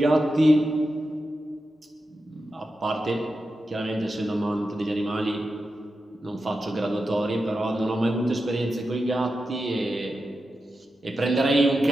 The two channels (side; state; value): both; normal; correlation 0.90